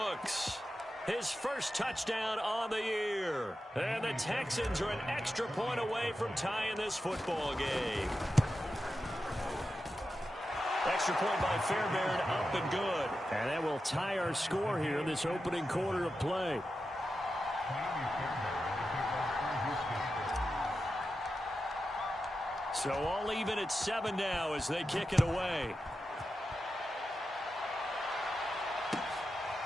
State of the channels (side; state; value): both; normal; correlation 0.90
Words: his first touchdown on the year. And the Texans are an extra point away from tying this football game. Extra point by Fairbairn, up and good. And that will tie our score here in this opening quarter of play. So all even at 7 now as they kick it away.